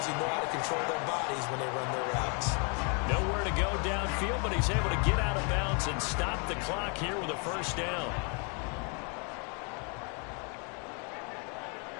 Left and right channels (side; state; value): right; quieter; 36.1 dB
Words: who know how to control their bodies when they run their routes. Nowhere to go downfield, but he's able to get out of bounds and stop the clock here with a first down.